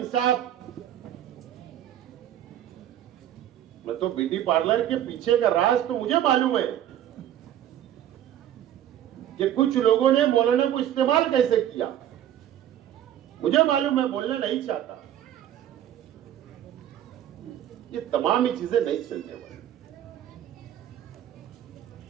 मैं तो ब्यूटी पार्लर के पीछे का राज तो मुझे मालूम है, कि कुछ लोगों ने मौलाना को इस्तेमाल कैसे किया। मुझे मालूम, मैं बोलना नहीं चाहता। ये तमाम ही चीजें नहीं चलने वाली।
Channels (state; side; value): quieter; left; 11.3 dB